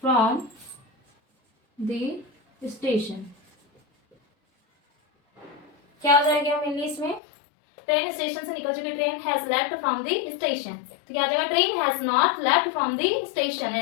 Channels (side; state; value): right; drops out; at 7.2 s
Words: from the station. क्या हो जाएगा मेनली इसमें? ट्रेन स्टेशन से निकल चुकी। Train has left from the station. तो क्या आ जाएगा? Train has not left from the station.